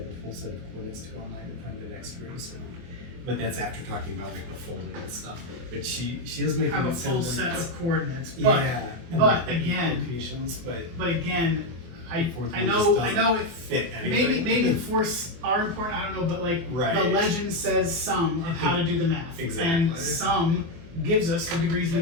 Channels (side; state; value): left; late; 24 ms